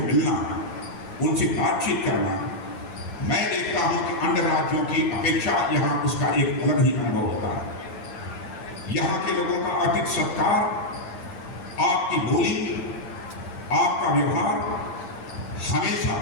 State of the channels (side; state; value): right; late; 9.8 ms